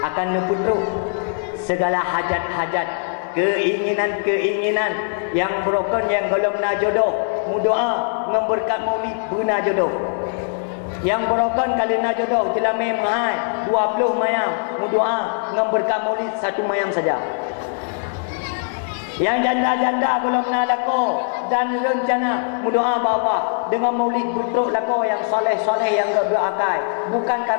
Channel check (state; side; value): silent; right; digital silence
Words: akan neputruk segala hajat-hajat, keinginan-keinginan yang broken, yang belum na jodoh, mudoa memberkat maulid buna jodoh. Yang berokan kalina jodoh jelame mahai 20 mayam berdoa dengan berkah maulid 1 mayam saja. Yang janda-janda belum lako dan rencana berdoa bapa dengan maulid putruk lako yang soleh-soleh yang berakal, bukan